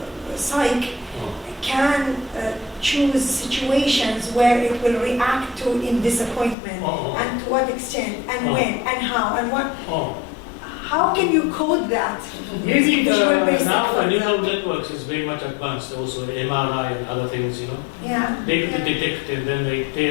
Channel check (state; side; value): drops out; right; at 6.6 s